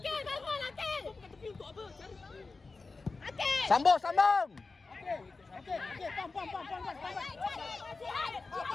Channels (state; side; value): quieter; right; 3.9 dB